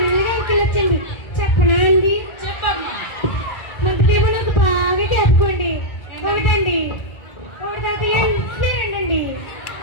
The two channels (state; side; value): late; right; 1.4 ms